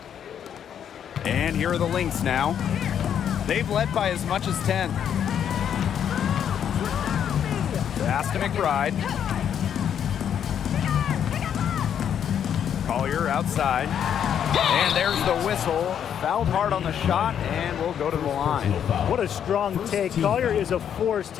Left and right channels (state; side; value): quieter; right; 8.9 dB